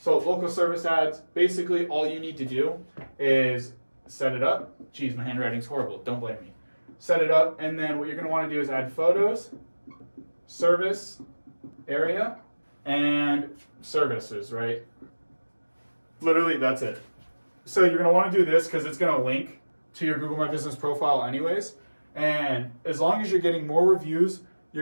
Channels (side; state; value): both; inverted; correlation -1.00